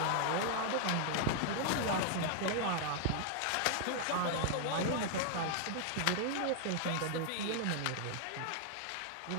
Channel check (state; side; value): different; both; correlation 0.00